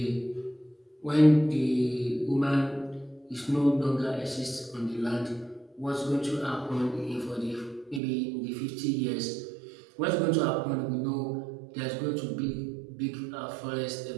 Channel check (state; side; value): drops out; left; at 8.0 s